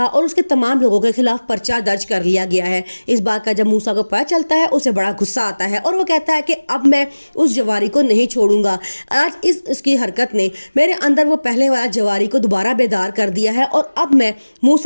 और उसके तमाम लोगों के खिलाफ पर्चा दर्ज कर लिया गया है। इस बात का जब मूसा को पता चलता है उसे बड़ा गुस्सा आता है और वो कहता है कि अब मैं उस जवारी को नहीं छोड़ूंगा। आज इसकी हरकत ने मेरे अंदर वो पहले वाला जवारी को दोबारा बेदार कर दिया है और अब मैं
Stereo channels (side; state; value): both; inverted; correlation -1.00